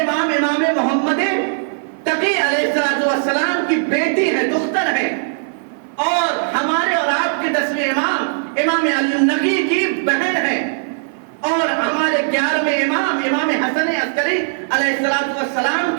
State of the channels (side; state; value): left; silent; 56 dB below the other